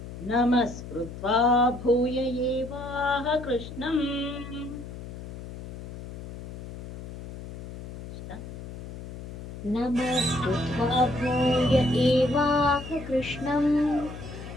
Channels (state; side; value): noise; left; hum, 11 dB below the sound